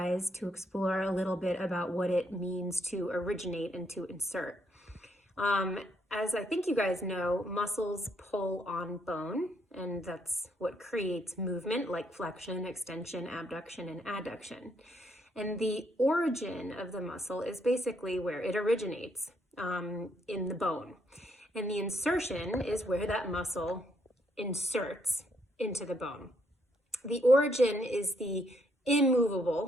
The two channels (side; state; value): both; normal; correlation 0.73